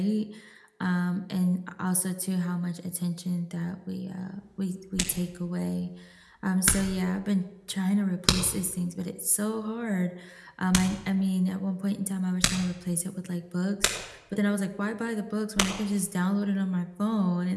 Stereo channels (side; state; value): both; identical; correlation 1.00